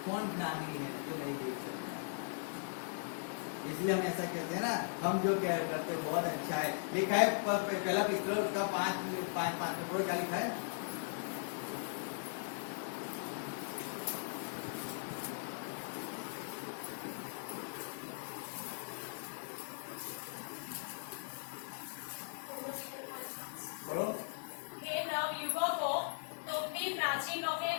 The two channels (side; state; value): right; silent; 52 dB below the other